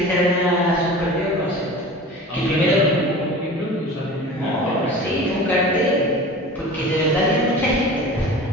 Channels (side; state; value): both; normal; correlation 0.37